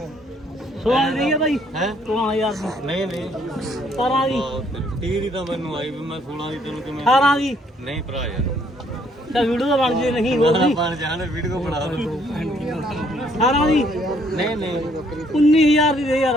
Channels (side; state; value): both; normal; correlation 0.66